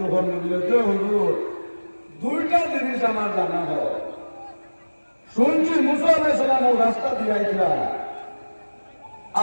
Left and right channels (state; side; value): inverted; both; correlation -1.00